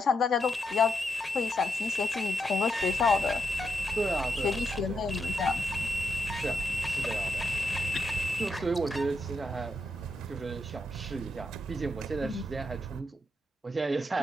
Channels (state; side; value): normal; both; correlation 0.81